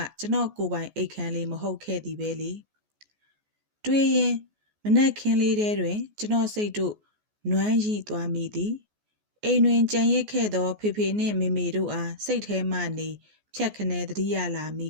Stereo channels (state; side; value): late; left; 14 ms